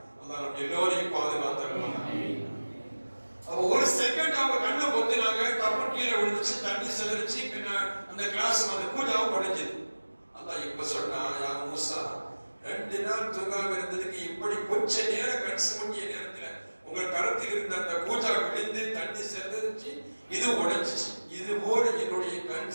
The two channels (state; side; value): inverted; both; correlation -1.00